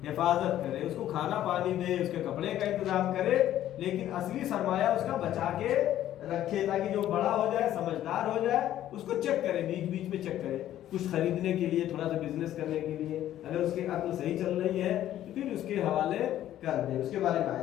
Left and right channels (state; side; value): quieter; right; 12.4 dB